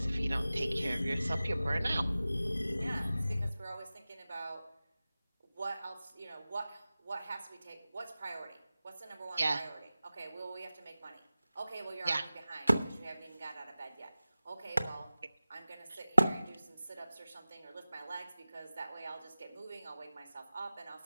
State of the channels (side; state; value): both; inverted; correlation -0.97